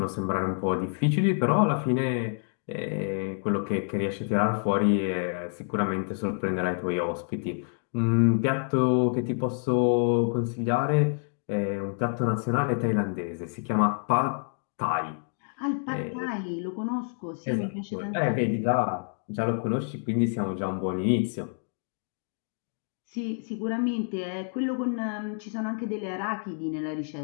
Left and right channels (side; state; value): right; silent; 59 dB below the other